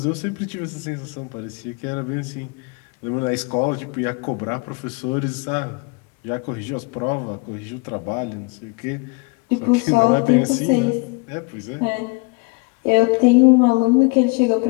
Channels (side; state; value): right; quieter; 30.0 dB